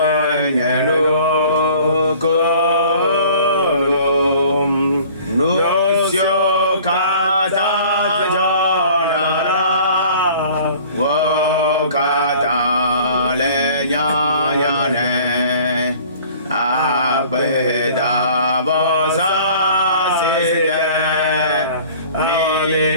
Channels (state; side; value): inverted; both; correlation -0.49